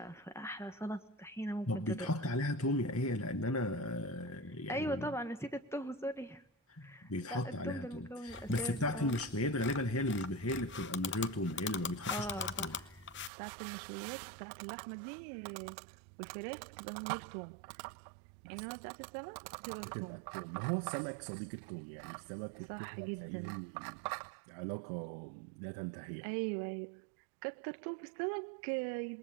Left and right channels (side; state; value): left; drops out; at 13.3 s